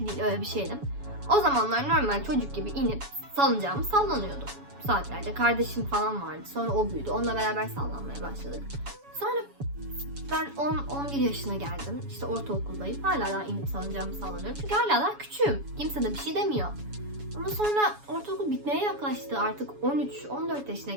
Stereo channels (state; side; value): late; left; 7.1 ms